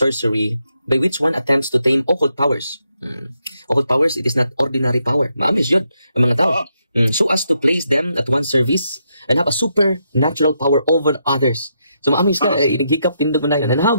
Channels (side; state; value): both; inverted; correlation -0.80